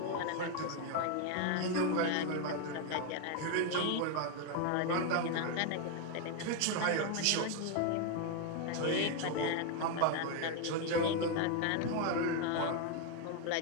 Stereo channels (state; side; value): different; both; correlation 0.01